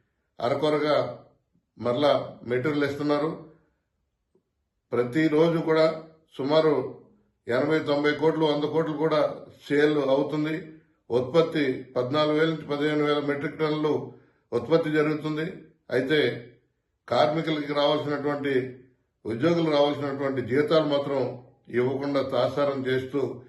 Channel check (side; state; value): both; identical; correlation 1.00